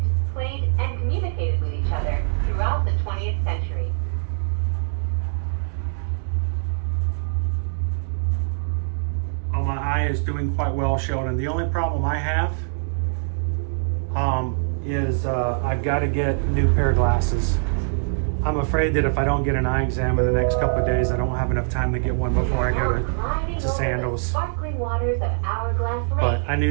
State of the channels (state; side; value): silent; left; digital silence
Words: played, and communicated with each other throughout the 20th century. Oh, my eye is doing quite well, Sheldon. The only problem I have is I've got to get a new pair of glasses. I'm afraid that if I don't get an eye exam in the next couple of days, I don't have enough time to get one before I go to Sandals. But I